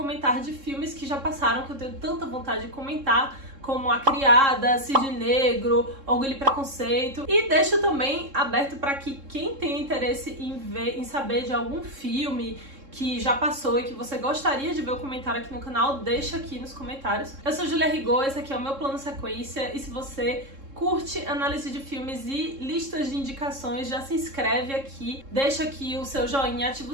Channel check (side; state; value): left; late; 3.7 ms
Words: de filmes que já passaram, que eu tenho tanta vontade de comentar, como A Criada, Cisne Negro, Orgulho e Preconceito. E deixo também aberto para que quem tem interesse em saber de algum filme que já passou e que você gostaria de ver o comentário aqui no canal, deixa aqui nos comentários. Eu sou Julia Rigaud, esse aqui é o meu plano sequência, e se você curte análise de filmes e listas de indicações, já se inscreve aqui, deixa aqui o seu joinha, ativa